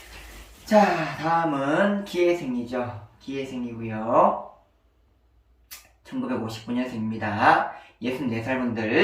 자, 다음은 기해생이죠. 기회생이고요. 1959년생입니다. 64살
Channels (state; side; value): identical; both; correlation 1.00